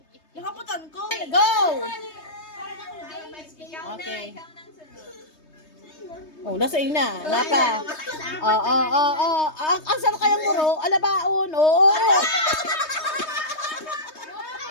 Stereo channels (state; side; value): late; right; 3.2 ms